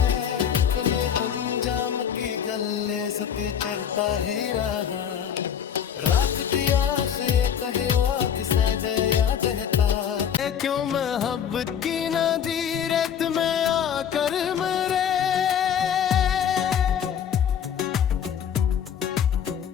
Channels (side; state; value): right; quieter; 8.5 dB